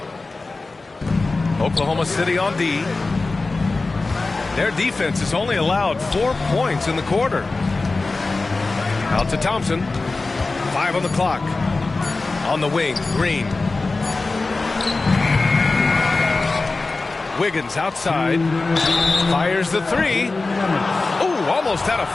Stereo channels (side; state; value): right; quieter; 3.6 dB